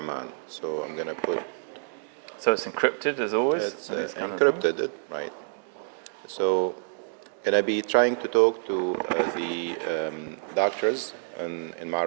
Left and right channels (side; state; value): left; silent; digital silence